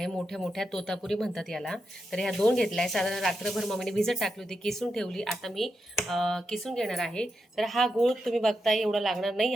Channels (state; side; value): normal; both; correlation 0.86